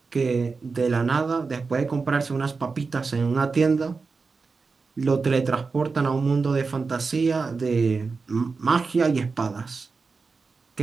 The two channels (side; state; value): left; quieter; 4.5 dB